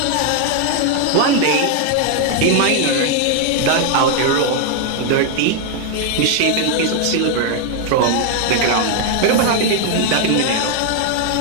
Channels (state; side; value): different; both; correlation 0.00